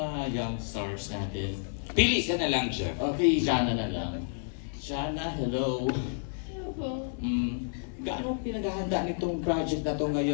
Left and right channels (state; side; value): silent; right; 56 dB below the other